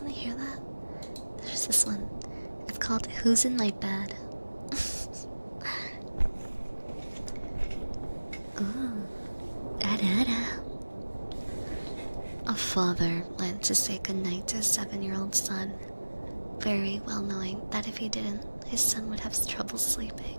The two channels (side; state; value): both; inverted; correlation -1.00